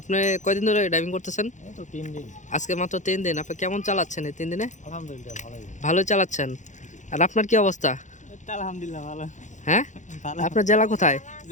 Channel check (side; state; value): right; late; 0.35 ms